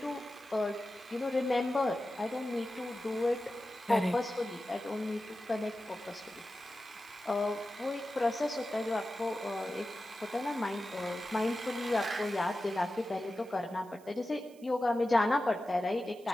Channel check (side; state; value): right; noise; hiss, 26 dB below the sound